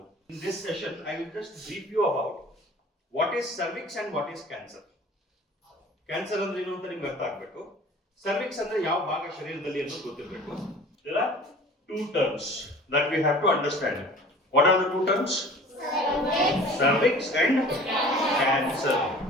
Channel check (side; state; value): both; normal; correlation 0.45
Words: In this session I will just brief you about what is cervix and what is cancer. Cancer ಅಂದ್ರೆ ಏನು ಅಂತ ನಿಮ್ಗೆ ಅರ್ಥ ಆಗ್ಬೇಕು. ಸರ್ವಿಕ್ಸ್ ಅಂದ್ರೆ ಯಾವ ಭಾಗ ಶರೀರದಲ್ಲಿ ಅನ್ನೋದು ಗೊತ್ತಿರಬೇಕು. There are two terms that we have to understand. What are the two terms? Cervix and cancer.